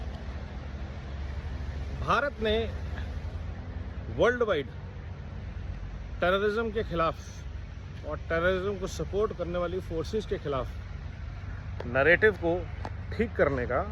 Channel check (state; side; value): identical; both; correlation 1.00